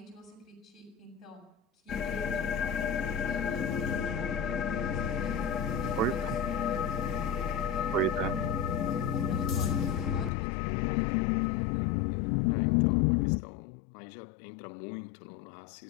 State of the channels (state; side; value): drops out; right; at 10.3 s